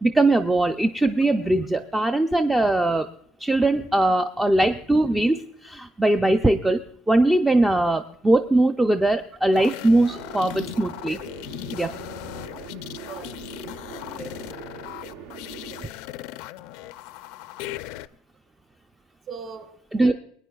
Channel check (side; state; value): both; normal; correlation 0.91